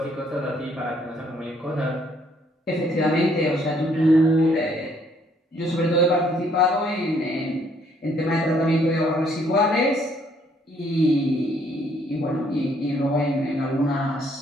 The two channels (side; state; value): both; normal; correlation 0.66